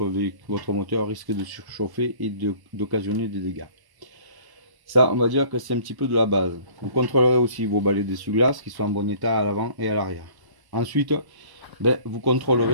moteur risque de surchauffer et d'occasionner des dégâts. Ça, on va dire que c'est un petit peu de la base. Vous contrôlerez aussi vos balais d'essuie-glace qui sont en bon état à l'avant et à l'arrière. Ensuite, vous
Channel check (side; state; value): left; late; 1.1 ms